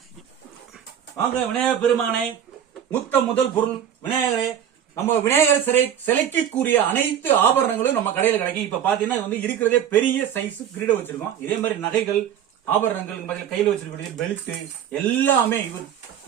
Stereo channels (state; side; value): quieter; left; 9.5 dB